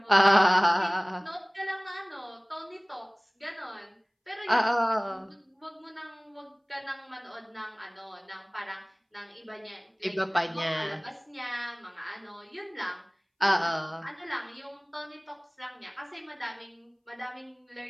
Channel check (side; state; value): both; identical; correlation 1.00